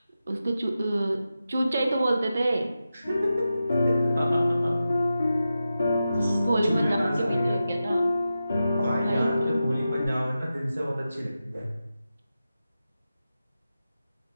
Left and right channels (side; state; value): both; inverted; correlation -0.92